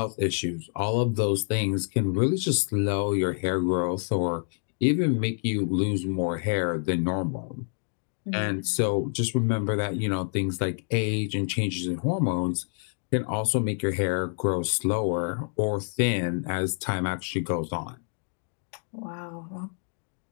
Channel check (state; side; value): silent; right; 60 dB below the other